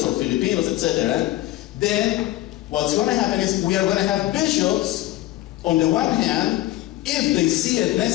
or Filipinos, etc., then what's going to happen is we are going to have bishops, on the one hand, if they see it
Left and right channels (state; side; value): quieter; right; 16.1 dB